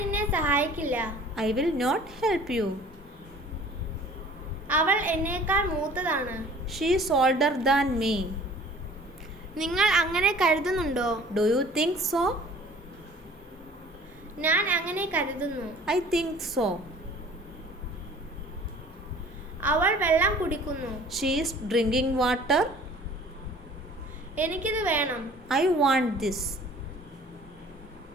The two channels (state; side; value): normal; both; correlation 0.49